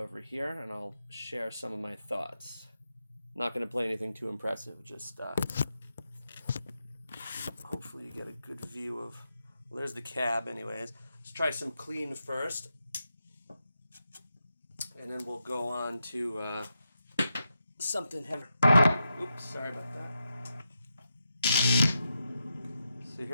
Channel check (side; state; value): both; inverted; correlation -0.87